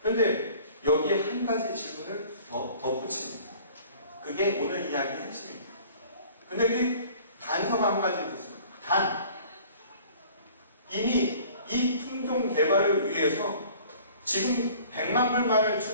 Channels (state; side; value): inverted; both; correlation -0.50